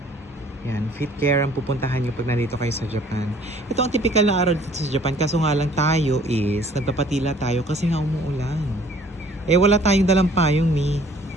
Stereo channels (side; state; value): both; normal; correlation 0.56